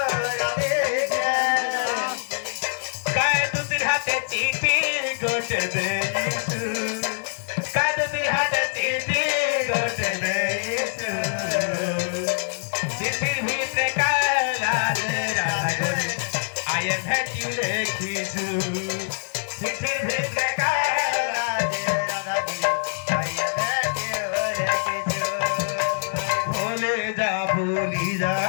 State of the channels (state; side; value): silent; right; digital silence